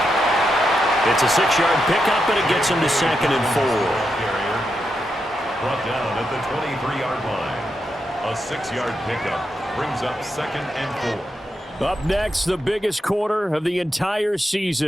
It's a 6-yard pickup, and it gets him to 2nd and 4. Brought down at the 23-yard line. A 6-yard pickup brings up 2nd and 4. Up next, the biggest quarter of the entire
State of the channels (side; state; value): both; normal; correlation 0.85